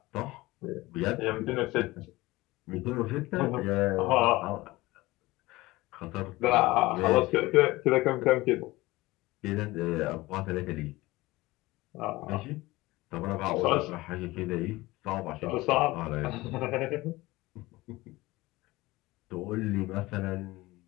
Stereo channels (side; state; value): right; quieter; 19.8 dB